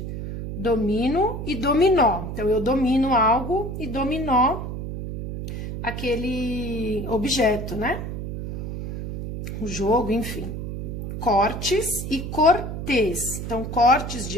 Domino e dominó. Então, eu domino algo e dominó aquele objeto, né? O jogo, enfim. Cortes e cortês. Então, cortes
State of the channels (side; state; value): right; noise; hum, 6 dB below the sound